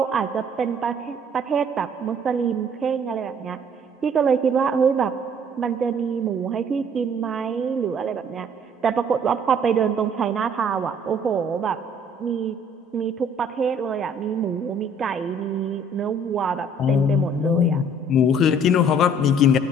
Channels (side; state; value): both; normal; correlation 0.57